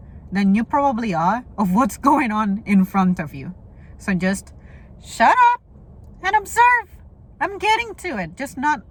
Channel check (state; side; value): identical; both; correlation 1.00